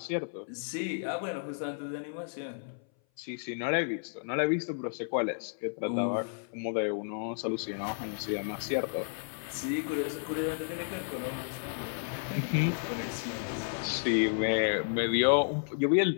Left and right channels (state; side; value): silent; right; 56 dB below the other